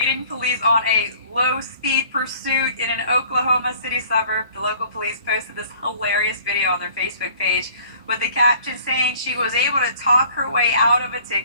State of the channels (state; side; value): inverted; both; correlation -0.53